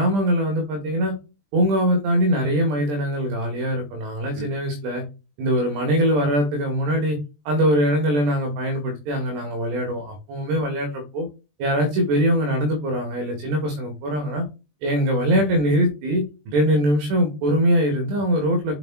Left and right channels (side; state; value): left; late; 20 ms